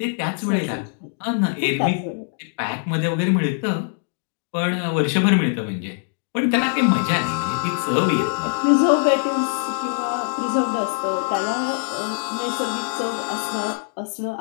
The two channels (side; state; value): right; silent; digital silence